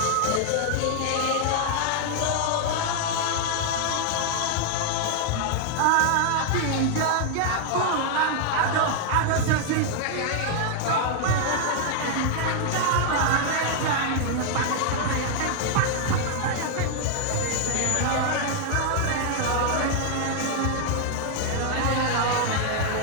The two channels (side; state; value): both; different; correlation 0.00